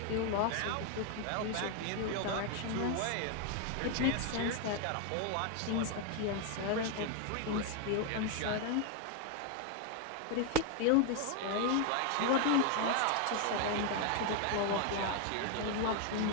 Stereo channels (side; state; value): both; different; correlation 0.01